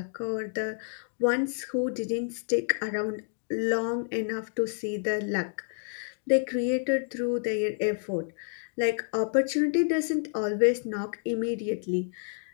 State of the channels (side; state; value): right; silent; digital silence